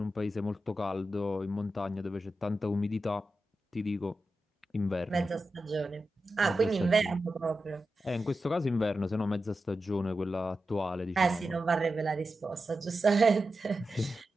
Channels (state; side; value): normal; both; correlation 0.91